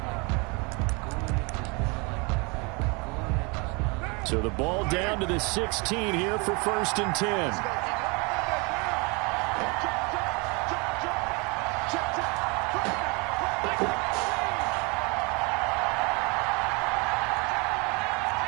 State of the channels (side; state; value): left; quieter; 29.6 dB